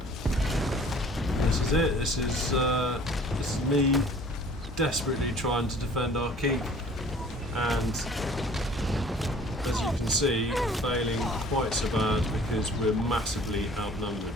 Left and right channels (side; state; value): both; normal; correlation 0.51